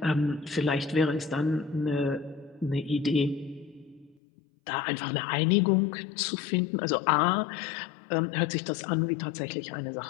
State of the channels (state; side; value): drops out; right; at 4.2 s